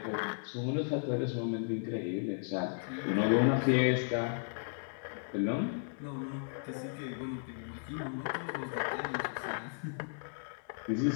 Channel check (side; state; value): right; silent; digital silence